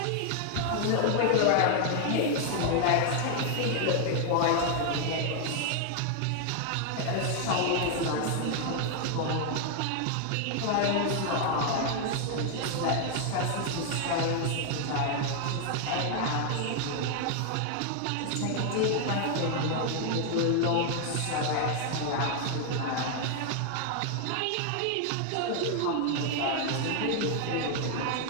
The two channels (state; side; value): different; both; correlation 0.00